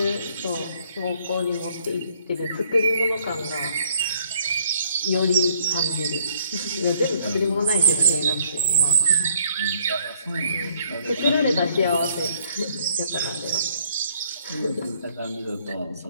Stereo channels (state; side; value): inverted; both; correlation -0.65